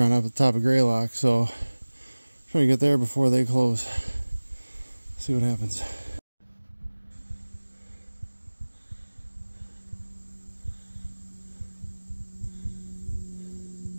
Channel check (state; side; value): inverted; both; correlation -1.00